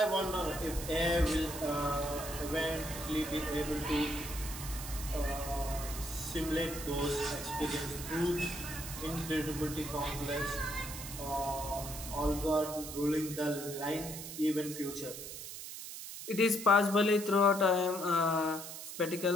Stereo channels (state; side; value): noise; right; hiss, 9 dB below the sound